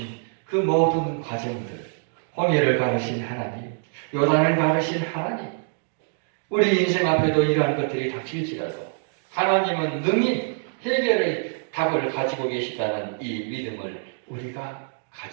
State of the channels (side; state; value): left; silent; digital silence